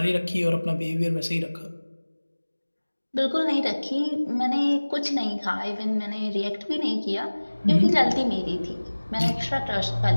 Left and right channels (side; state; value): both; inverted; correlation -1.00